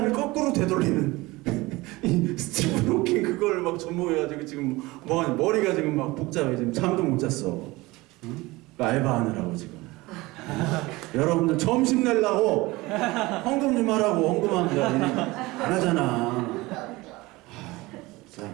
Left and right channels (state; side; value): quieter; left; 21.2 dB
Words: 거꾸로 되돌리는 이 스티븐 호킹 그걸 막 접목해가지고 지금 머리가 지금 막 복잡해. 지금 잠도 못 잤어. 응? 알바하느라고 지금. 여러분들 점심 내려고 헌금 좀 하라고 헌금합니다. 안 하잖아. 자,